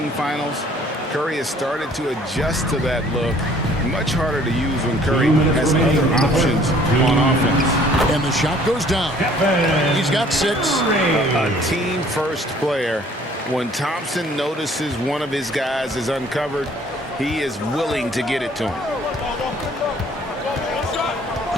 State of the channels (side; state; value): both; normal; correlation 0.56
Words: finals. Curry has started to adjust to that look. Much harder to use when Curry has other options on offense. And the shot goes down. He's got 6. A team-first player. When Thompson notices one of his guys is uncovered, he is willing to get it to him.